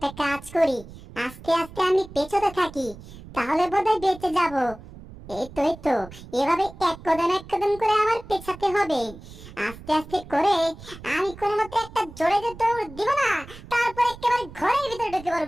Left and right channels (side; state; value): right; noise; rumble, 17 dB below the sound